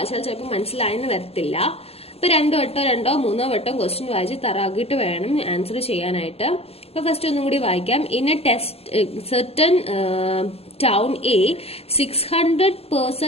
ചിലപ്പോൾ മനസ്സിലായെന്ന് വരത്തില്ല. അപ്പൊ രണ്ടോ മൂന്നോ വട്ടം ക്വസ്റ്റ്യൻ വായിച്ച് തറാക്കിയിട്ട് വേണം ആൻസർ ചെയ്യാനായിട്ട്. അപ്പൊ ഫസ്റ്റ് ഒന്നും കൂടി വായിക്കാം. In A test certain town A, 600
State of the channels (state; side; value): late; right; 0.29 ms